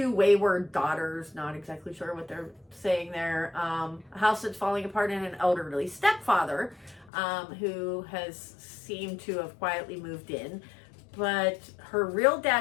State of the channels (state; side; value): drops out; right; at 7.1 s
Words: wayward daughters, not exactly sure what they're saying there, a house that's falling apart, and an elderly stepfather who has seemed to have quietly moved in. But her real